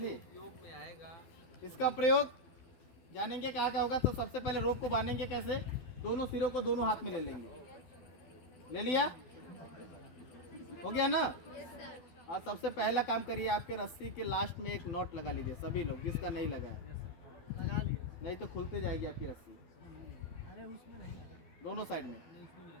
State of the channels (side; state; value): right; late; 12 ms